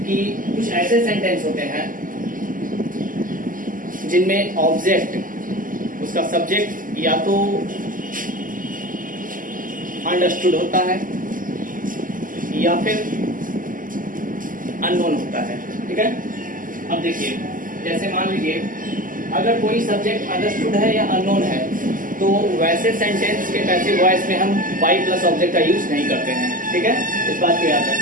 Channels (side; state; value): left; late; 0.39 ms